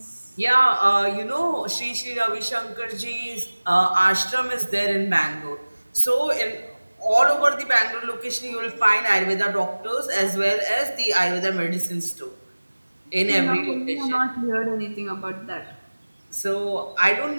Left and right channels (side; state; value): both; inverted; correlation -1.00